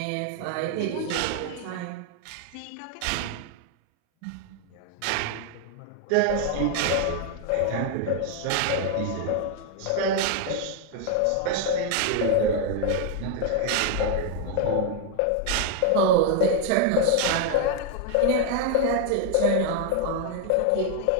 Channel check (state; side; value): different; both; correlation 0.01